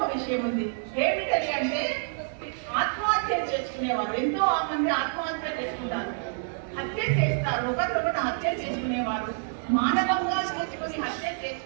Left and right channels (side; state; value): left; silent; digital silence